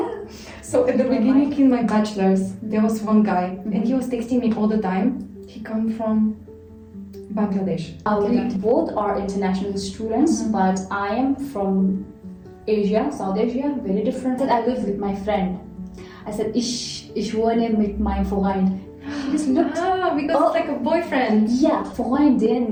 So at the beginning in my bachelor's, there was one guy, and he was texting me all the time. He come from Bangladesh. We both are international students, but I am from Asia, South Asia, very different. I live with my friend. I said, ich wohne mit meinem Freund. He just looked. Because it's like a boyfriend. Yeah,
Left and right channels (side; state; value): both; identical; correlation 1.00